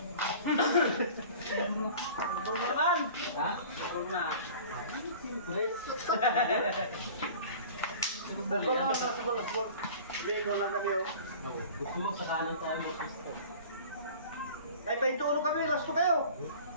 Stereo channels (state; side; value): inverted; both; correlation -0.42